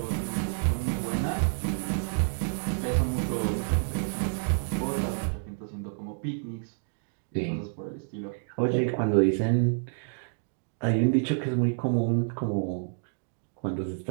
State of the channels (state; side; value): silent; left; digital silence